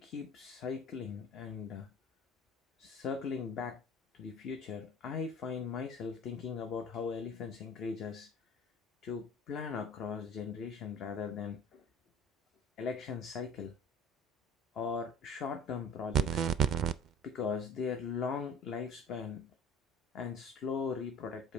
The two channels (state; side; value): normal; both; correlation 0.42